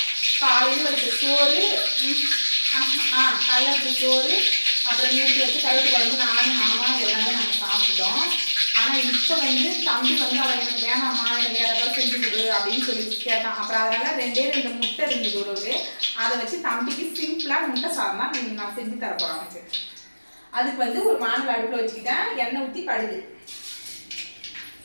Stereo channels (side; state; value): both; inverted; correlation -1.00